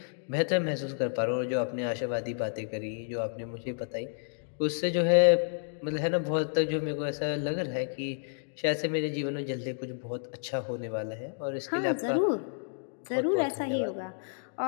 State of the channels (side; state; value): right; silent; digital silence